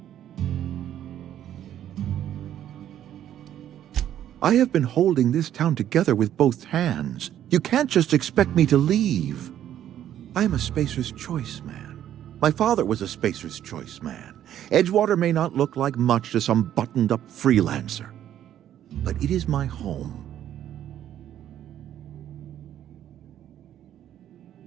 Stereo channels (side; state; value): left; quieter; 11.1 dB